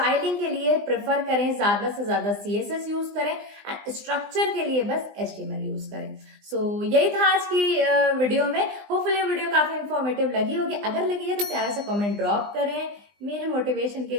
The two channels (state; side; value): late; left; 20 ms